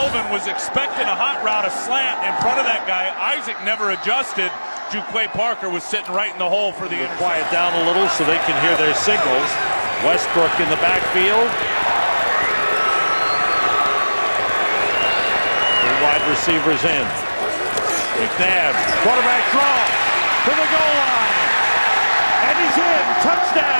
was expecting a hot route, a slant in front of that guy. Isaac never adjusted. Juquay Parker was sitting right in the hole for the interception. Quiet down a little so they can hear their signals. Westbrook in the backfield. Three wide receivers in. McNabb, quarterback draw to the goal line. And he's in.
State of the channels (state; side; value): inverted; both; correlation -1.00